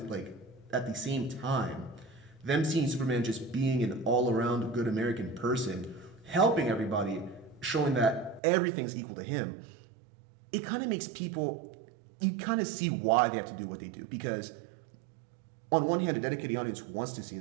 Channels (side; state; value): left; drops out; at 8.4 s